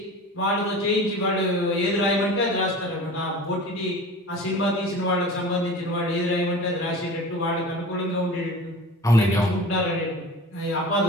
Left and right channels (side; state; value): both; normal; correlation 0.37